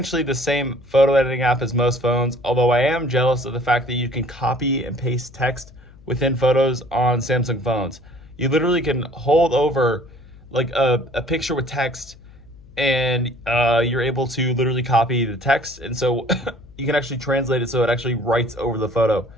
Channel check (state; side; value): noise; left; hum, 23 dB below the sound